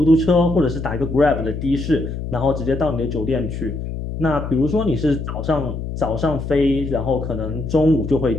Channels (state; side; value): noise; left; hum, 6 dB below the sound